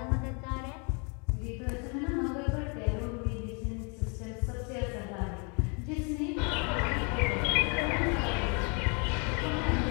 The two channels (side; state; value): right; quieter; 35.2 dB